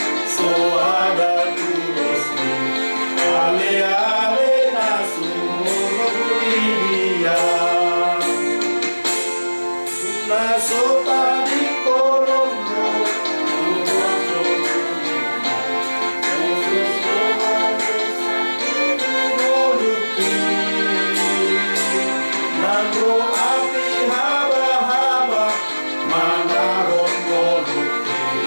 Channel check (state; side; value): inverted; both; correlation -1.00